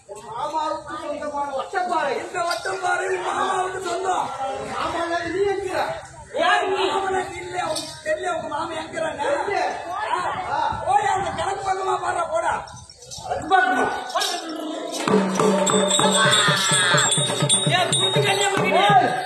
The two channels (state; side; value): identical; both; correlation 1.00